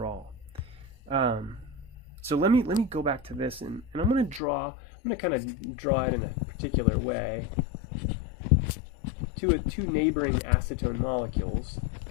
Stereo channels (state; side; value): drops out; right; at 4.4 s